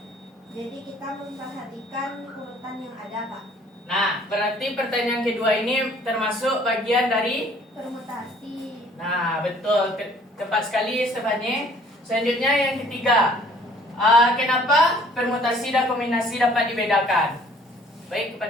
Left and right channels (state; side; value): normal; both; correlation 0.57